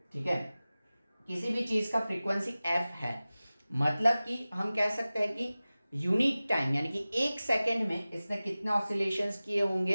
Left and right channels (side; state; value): both; inverted; correlation -0.97